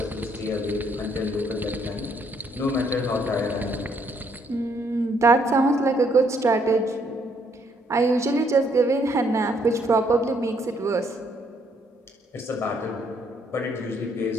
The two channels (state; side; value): normal; both; correlation 0.69